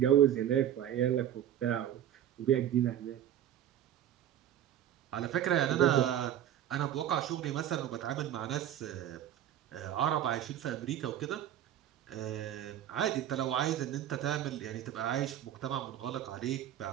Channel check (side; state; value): left; quieter; 11.1 dB